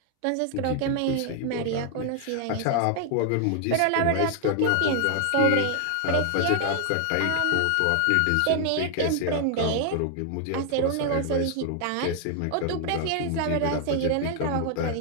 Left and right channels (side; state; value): both; different; correlation 0.00